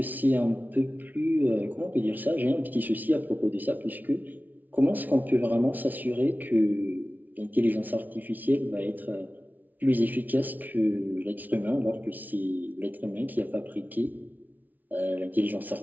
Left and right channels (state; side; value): late; left; 0.080 ms